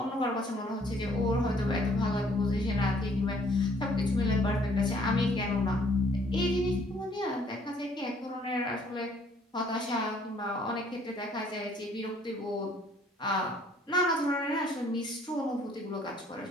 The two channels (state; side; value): normal; both; correlation 0.62